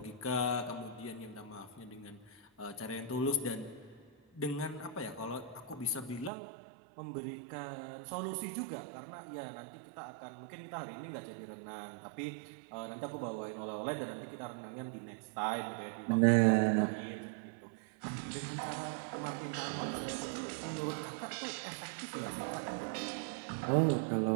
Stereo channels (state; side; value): drops out; left; at 6.3 s